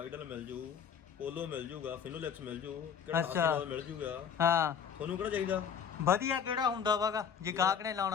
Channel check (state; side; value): quieter; right; 7.4 dB